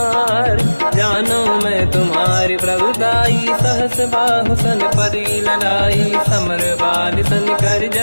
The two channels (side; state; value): both; inverted; correlation -1.00